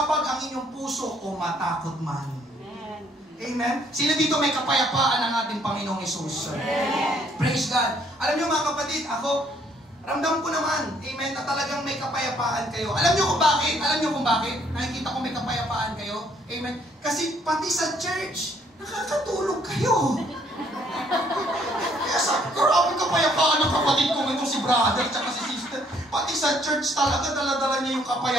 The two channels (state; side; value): normal; both; correlation 0.65